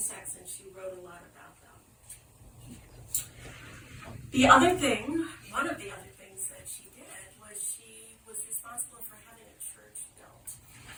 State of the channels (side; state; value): both; identical; correlation 1.00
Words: and she wrote a lot about them. One of the other things that she did was she was responsible for having a church built